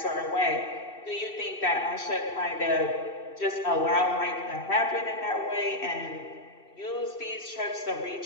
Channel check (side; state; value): right; late; 2.7 ms